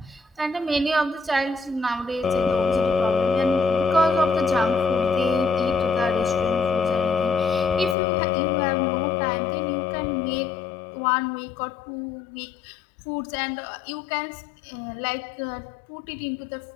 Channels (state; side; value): drops out; right; at 8.0 s